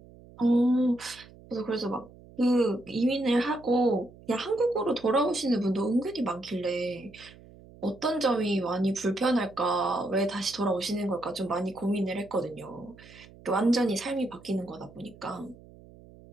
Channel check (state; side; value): noise; right; hum, 22 dB below the sound